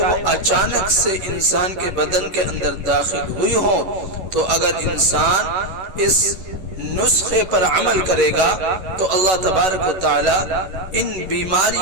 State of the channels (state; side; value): late; left; 11 ms